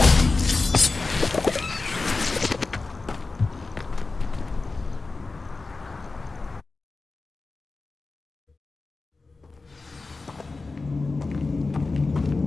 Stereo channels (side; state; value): right; quieter; 3.7 dB